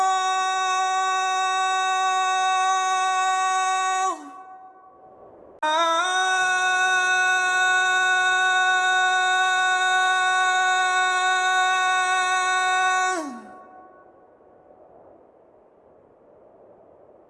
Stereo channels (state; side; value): identical; both; correlation 1.00